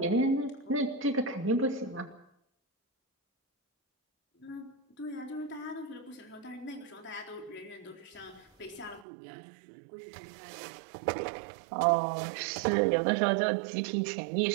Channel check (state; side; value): drops out; left; at 9.1 s